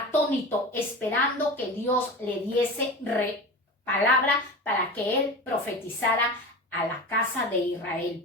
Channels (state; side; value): normal; both; correlation 0.29